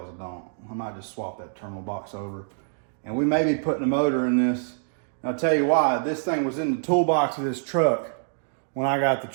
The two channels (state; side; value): silent; left; digital silence